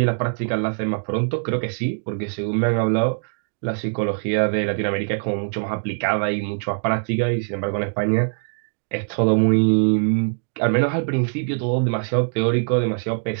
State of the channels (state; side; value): silent; left; digital silence